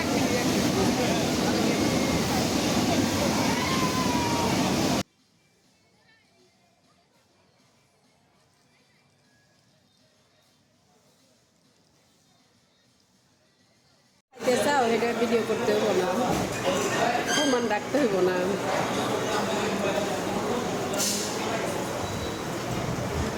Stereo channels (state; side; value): identical; both; correlation 1.00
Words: চাও এটা ভিডিও করতে হইব না, প্রমাণ রাখতে হইব না।